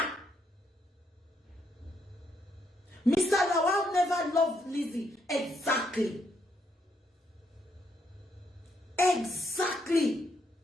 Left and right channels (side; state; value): both; normal; correlation 0.75